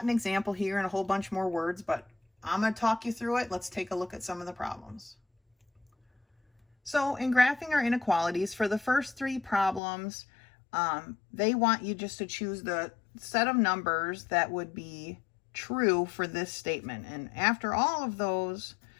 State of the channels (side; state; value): right; drops out; at 9.8 s